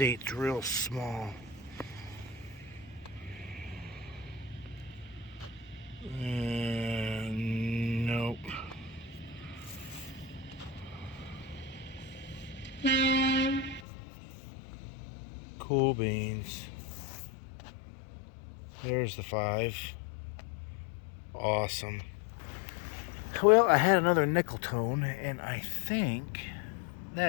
real small. Nope. Cool beans. There's the 5. Awesome. Well, I had another nickel tone, and I think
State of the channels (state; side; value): drops out; right; at 13.8 s